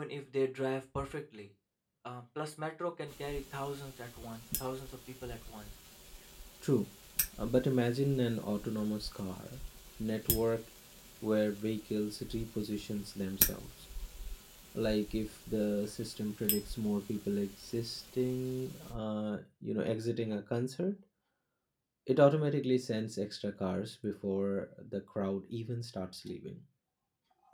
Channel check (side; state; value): both; identical; correlation 1.00